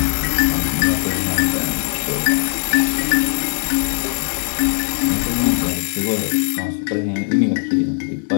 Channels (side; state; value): right; silent; 66 dB below the other